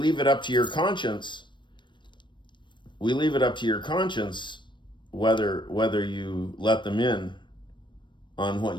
it up to your conscience. We leave it up to your conscience whether you let them in on what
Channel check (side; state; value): right; late; 0.22 ms